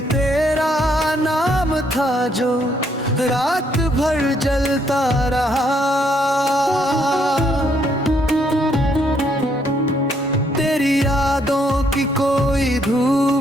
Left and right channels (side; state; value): both; normal; correlation 0.71